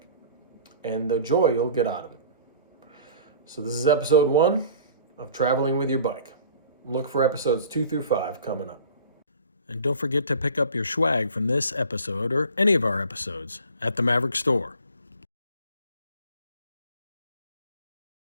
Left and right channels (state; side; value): inverted; both; correlation -0.45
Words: and the joy you'll get out of it. So this is episode 1 of Traveling with Your Bike. Look for episodes 2 through 5 coming up. And don't forget to pick up your SCHWAG from this episode or any of our episodes at the Maverick Store.